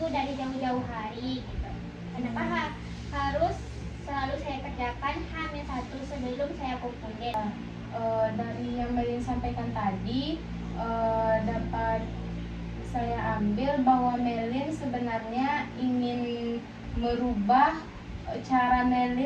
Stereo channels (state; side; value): identical; both; correlation 1.00